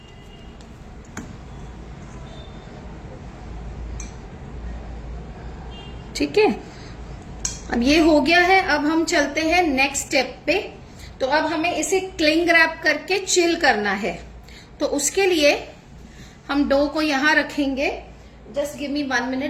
ठीक है, अब ये हो गया है। अब हम चलते हैं नेक्स्ट स्टेप पे। तो अब हमें इसे क्लिंग रैप करके चिल करना है। तो उसके लिए हम डो को यहां रखेंगे। Just give me 1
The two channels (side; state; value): both; identical; correlation 1.00